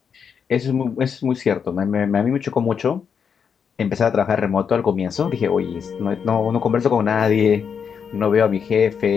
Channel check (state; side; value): quieter; right; 6.9 dB